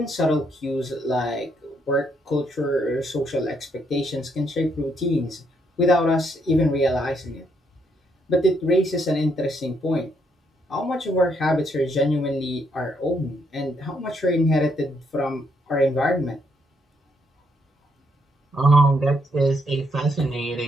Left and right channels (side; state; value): both; normal; correlation 0.74